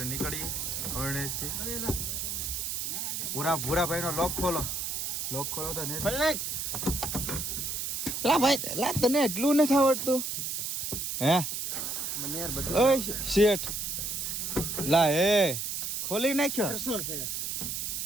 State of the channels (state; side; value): noise; right; hiss, 3 dB below the sound